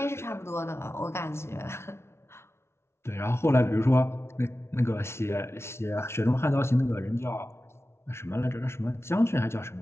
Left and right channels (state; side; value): late; right; 0.12 ms